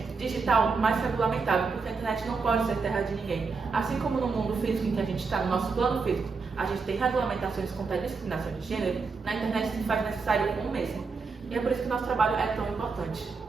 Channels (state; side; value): quieter; left; 4.7 dB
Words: digital mais regulamentado, porque a internet não pode ser terra de ninguém. Assim como no mundo físico em que a gente está, no nosso plano físico, a gente tem regulamentações contra a discriminação de gênero, na internet se faz necessário o mesmo. E é por isso que o nosso trabalho é tão importante,